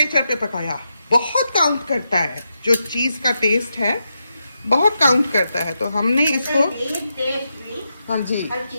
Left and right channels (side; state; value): both; inverted; correlation -0.86